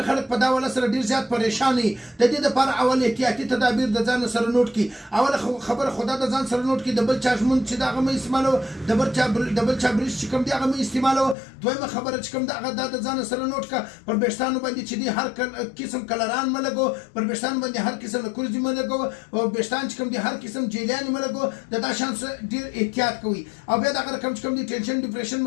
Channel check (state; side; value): drops out; right; at 11.4 s